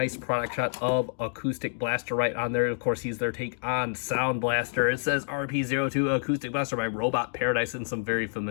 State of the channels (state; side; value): silent; right; digital silence